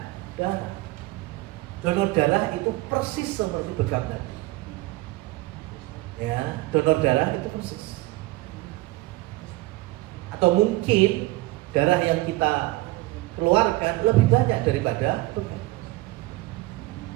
darah. Donor darah itu persis seperti bekam tadi. Ya, donor darah itu persis. Atau mungkin darah yang kita keluarkan lebih banyak daripada bekam.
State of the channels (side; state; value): left; quieter; 20.0 dB